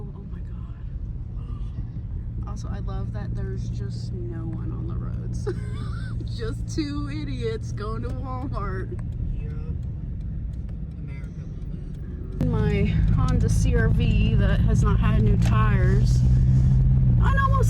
Oh my god. Also, I love that there's just no one on the roads. Just two idiots going to Walmart. My Honda CR-V that has not had new tires. I know most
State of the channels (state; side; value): identical; both; correlation 1.00